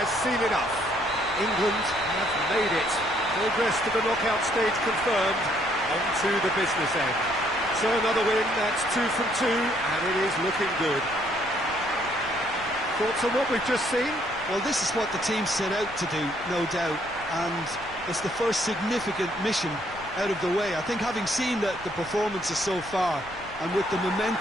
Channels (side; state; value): left; noise; rumble, 19 dB below the sound